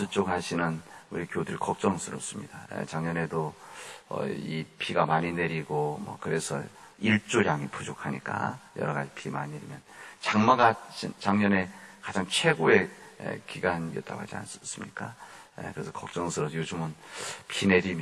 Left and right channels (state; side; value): identical; both; correlation 1.00